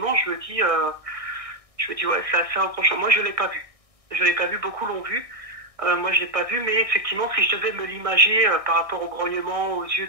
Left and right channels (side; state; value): left; late; 1.6 ms